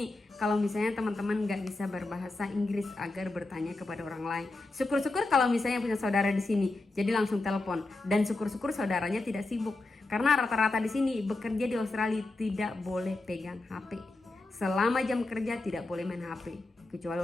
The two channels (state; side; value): quieter; right; 3.1 dB